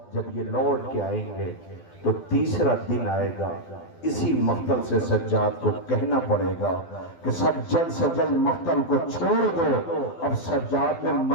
جب یہ لوٹ کے آئیں گے تو تیسرا دن آئے گا، اسی مقتل سے سجاد کو کہنا پڑے گا کہ سب جلد سے جلد مقتل کو چھوڑ دو، اب سجاد میں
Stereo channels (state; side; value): late; right; 12 ms